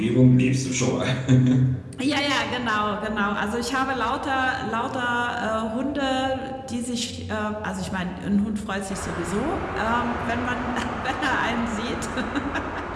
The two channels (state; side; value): identical; both; correlation 1.00